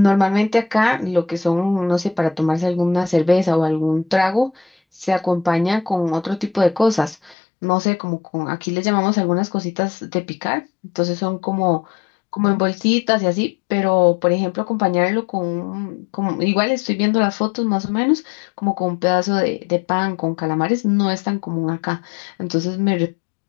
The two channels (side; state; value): right; drops out; at 7.4 s